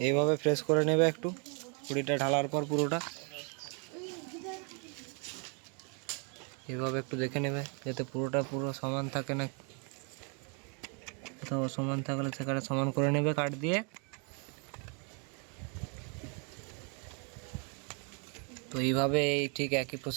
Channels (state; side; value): quieter; left; 37.4 dB